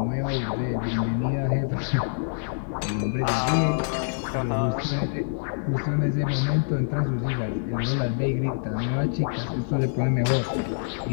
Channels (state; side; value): silent; right; 61 dB below the other